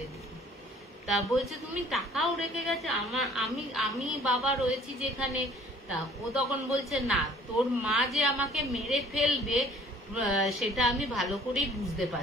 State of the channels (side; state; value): both; normal; correlation 0.53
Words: দিবি। তা বলছে তুমি টাকাও রেখে গেছে, আমি বাবা রয়েছি যেখানে। তা ও তখন বলছে না, তোর মা যে আমাকে মেরে ফেলবে সেটা আমি ভালো করেই বুঝতে